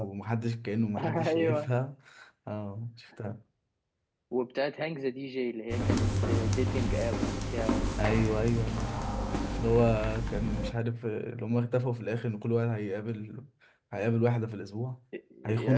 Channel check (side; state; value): both; identical; correlation 1.00